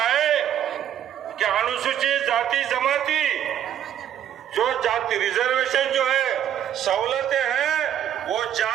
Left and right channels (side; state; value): left; quieter; 10.3 dB